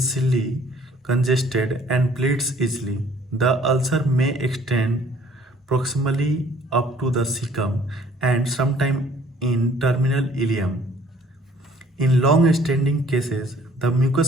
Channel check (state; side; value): normal; both; correlation 0.57